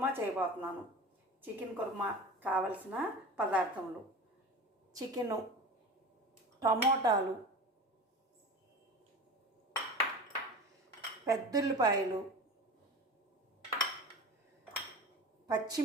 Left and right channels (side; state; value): both; normal; correlation 0.32